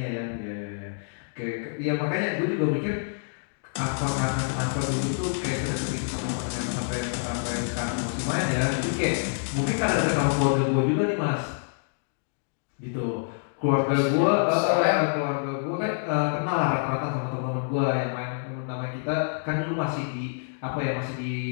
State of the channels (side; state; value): right; silent; digital silence